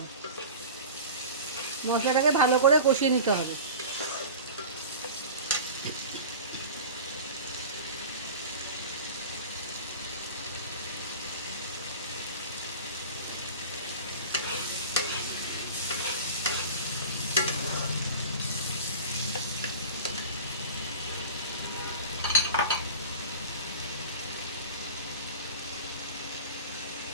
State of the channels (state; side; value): inverted; both; correlation -0.34